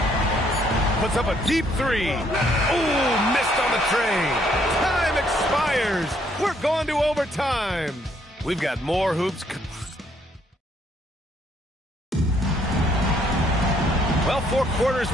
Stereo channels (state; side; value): normal; both; correlation 0.68